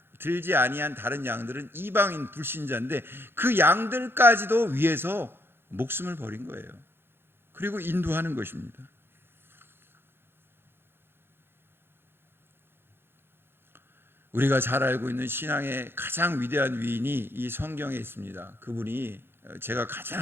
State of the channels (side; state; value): left; late; 0.11 ms